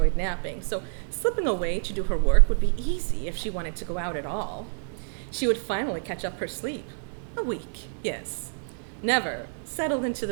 napping, so slipping away to do her work would be easy if she wanted to go out at all. She would finally catch up her sleep. A week, yes. Never settled into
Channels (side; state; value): left; silent; 59 dB below the other